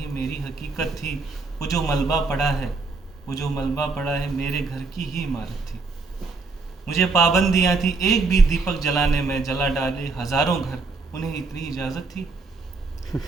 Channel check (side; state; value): left; quieter; 3.9 dB